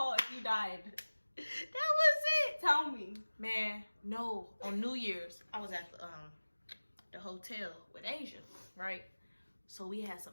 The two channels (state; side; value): inverted; both; correlation -1.00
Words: if you died? That was it. Tell me. Man, no. On New Year's, I was at the hotel with Asia, right? So we had some